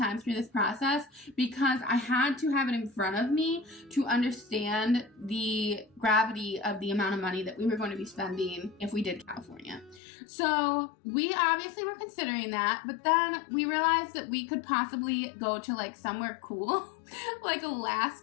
through this process, because I had to have it in front of me to understand the gravity of the amount of money that we were going to be spending if we did California. So we obviously were considering that, but then we realized that we could possibly go to like somewhere cool, like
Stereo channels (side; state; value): right; drops out; at 10.0 s